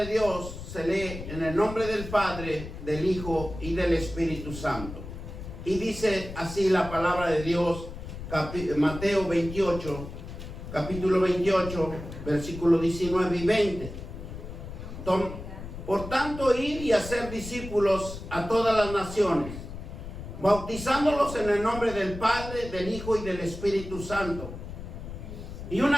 Dios se lee en el nombre del Padre, del Hijo y del Espíritu Santo. Y dice así la palabra de Dios, Mateo 28, capítulo 28, versículos 19 y 20. Por tanto, id y hacer discípulos a todas las naciones, bautizándolos en el nombre del Padre, del Hijo y del Espíritu Santo. Y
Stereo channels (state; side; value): noise; left; rumble, 10 dB below the sound